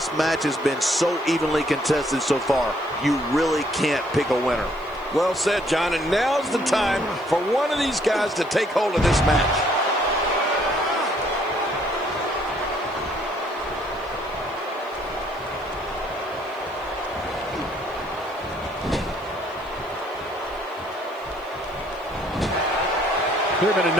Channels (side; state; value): left; noise; hiss, 28 dB below the sound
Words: match has been so evenly contested so far. You really can't pick a winner. Well said, John, and now's the time for one of these guys to take hold of this match. There have been a